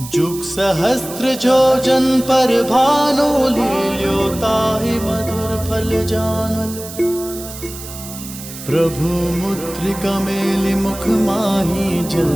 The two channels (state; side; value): noise; right; hiss, 13 dB below the sound